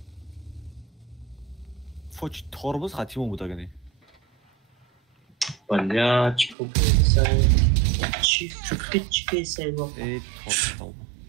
فوج توربوز خطیمون بود اگه نی. بلا چیکو بیسای چی بیسای با ای توربوز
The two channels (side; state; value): left; drops out; at 6.6 s